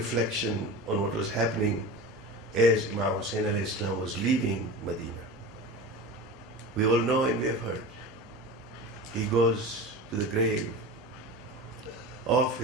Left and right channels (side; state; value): both; normal; correlation 0.31